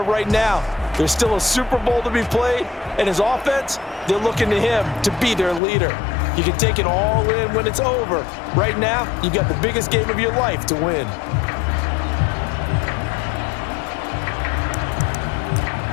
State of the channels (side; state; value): right; drops out; at 5.6 s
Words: right now. There's still a Super Bowl to be played, and his offense, they're looking to him to be their leader. You can take it all in when it's over. Right now, you've got the biggest game of your life to win.